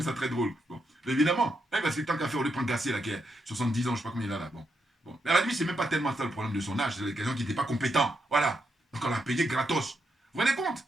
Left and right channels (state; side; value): normal; both; correlation 0.82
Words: ça très drôle. Bon. Mais évidemment, hein, parce que tant qu'à faire, on lui prend Gassé, là, qui a 70 ans, je sais pas combien il a là, bon. Bon. Mais à la limite, c'est même pas tellement ça le problème de son âge, c'est quelqu'un qui n'était pas compétent. Voilà. Donc on l'a payé gratos. Vous vous rendez compte?